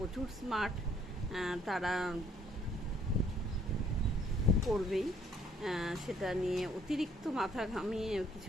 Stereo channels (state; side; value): normal; both; correlation 0.64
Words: স্মার্ট, তারা করবেই, সেটা নিয়ে অতিরিক্ত মাথা ঘামিয়ে